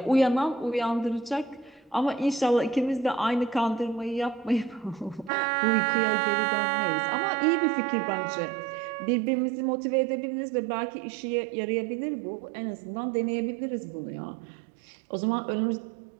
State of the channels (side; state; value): left; drops out; at 5.3 s